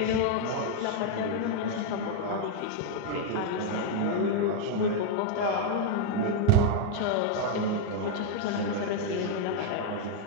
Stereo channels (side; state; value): both; different; correlation 0.00